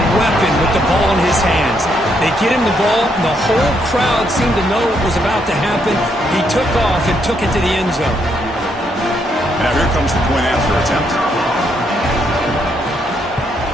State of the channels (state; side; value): normal; both; correlation 0.75